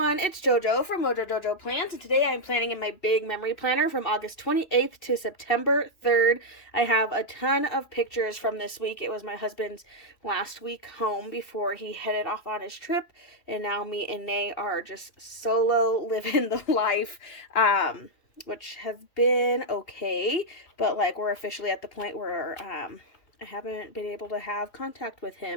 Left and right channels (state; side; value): late; right; 2.8 ms